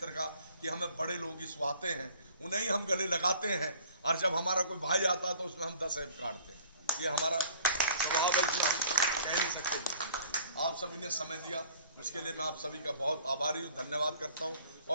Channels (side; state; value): both; inverted; correlation -0.53